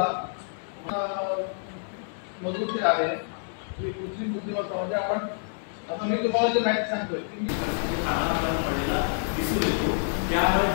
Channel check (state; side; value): silent; right; digital silence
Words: मधून ते आहे की कृत्रिम बुद्धिमत्ता म्हणजे आपण आता मी तुम्हाला जे माहिती सांगतोय की दिसून येतो. त्यामुळे